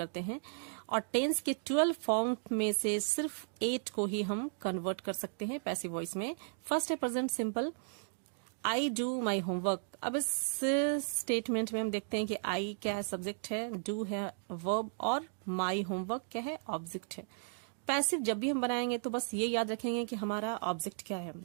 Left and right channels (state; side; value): silent; left; digital silence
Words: हैं। और टेंस के 12 फॉर्म में से सिर्फ 8 को ही हम कन्वर्ट कर सकते हैं पैसिव वॉइस में। फर्स्ट है present simple, I do my homework. अब इस स्टेटमेंट में हम देखते हैं कि आई क्या है, सब्जेक्ट है, डू है वर्ब, और माई होमवर्क क्या है, ऑब्जेक्ट है। पैसिव जब भी हम बनाएंगे तो बस ये याद रखेंगे कि हमारा ऑब्जेक्ट क्या है।